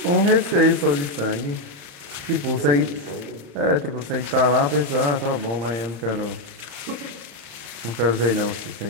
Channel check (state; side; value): late; left; 34 ms